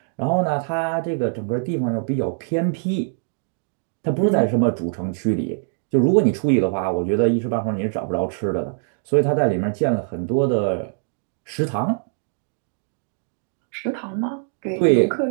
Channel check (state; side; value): silent; left; digital silence